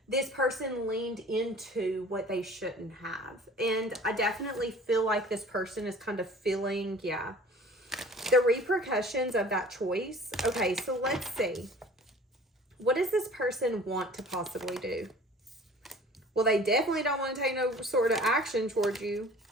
This person leaned into what they shouldn't have. And I definitely feel like this person is kind of feeling, the repercussions of that choice. Okay, so let's see. What does this person want to possibly do? Well, they definitely don't want to take no sort of action towards you.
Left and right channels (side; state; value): both; normal; correlation 0.47